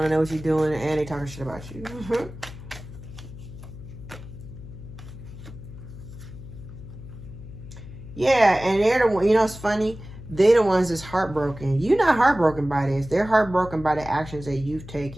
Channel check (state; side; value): noise; left; hum, 14 dB below the sound